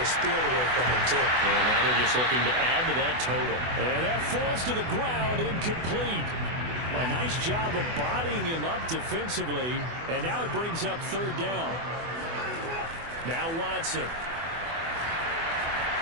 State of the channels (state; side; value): late; left; 24 ms